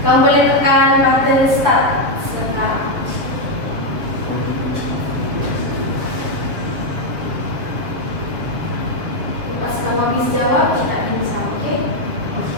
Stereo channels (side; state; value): left; late; 7.3 ms